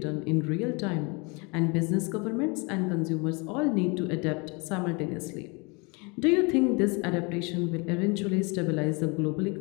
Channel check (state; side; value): quieter; right; 29.8 dB